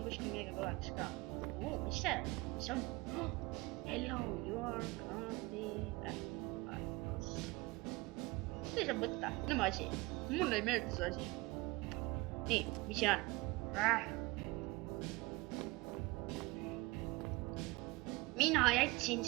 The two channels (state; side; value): quieter; left; 23.2 dB